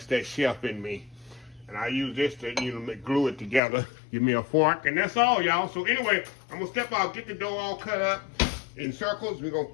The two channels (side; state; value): right; drops out; at 3.6 s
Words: that chef in me. And I use this to, glue it together. Give me a fork, and that's all, y'all. So anyway, I'm gonna step out, get the dough all cut up in circles. We're gonna